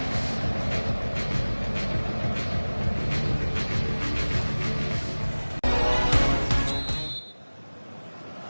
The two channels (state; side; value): inverted; both; correlation -1.00